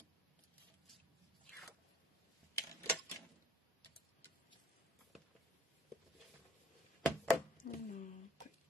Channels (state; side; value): normal; both; correlation 0.56